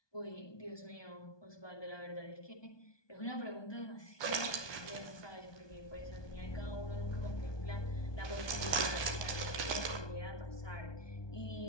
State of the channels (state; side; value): late; right; 1.2 ms